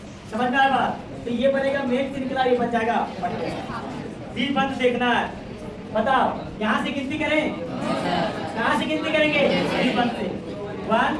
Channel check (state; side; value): identical; both; correlation 1.00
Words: समझ में आया बात? तो ये बनेगा मेन श्रृंखला, ये बन जाएगा द्विबंध। देखना है, बताओ यहाँ से गिनती करें, कहाँ से गिनती करेंगे? द्विबंध से। 1